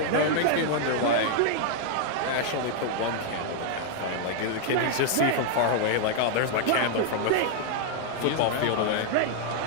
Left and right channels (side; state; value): both; different; correlation 0.00